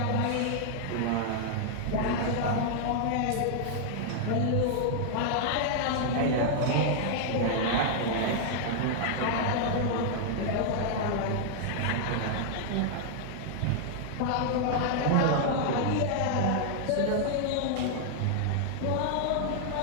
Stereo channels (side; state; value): both; different; correlation -0.01